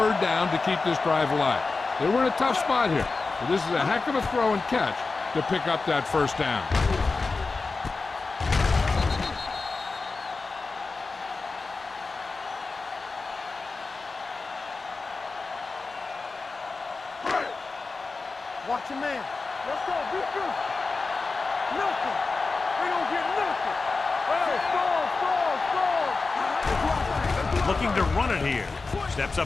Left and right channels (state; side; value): quieter; right; 4.0 dB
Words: down to keep this drive alive. They were in a tough spot here, but this is a heck of a throw and catch to pick up that first down. Watch your man. Let's go. Be good. Nothing. They don't get nothing. Hey, score. Looking to run it here. Steps